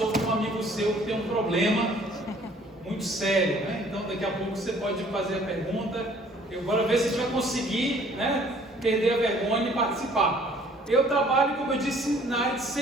um amigo seu que tem um problema muito sério, né? Então, daqui a pouco você pode fazer a pergunta. Eu vou ver se a gente vai conseguir, né, perder a vergonha e participar. Eu trabalho, como eu disse, na área de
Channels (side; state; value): both; normal; correlation 0.57